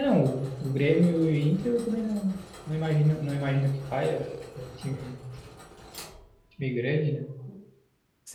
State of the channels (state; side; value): identical; both; correlation 1.00